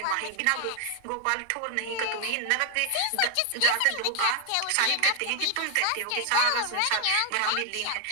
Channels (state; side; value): different; both; correlation 0.00